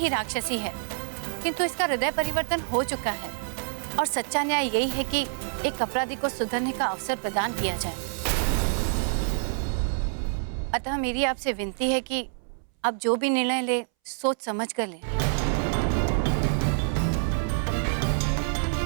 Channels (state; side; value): silent; left; 60 dB below the other